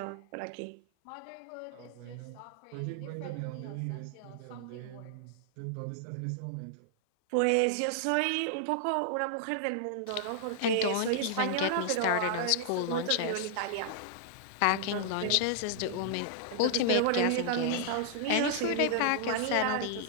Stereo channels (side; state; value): both; different; correlation -0.01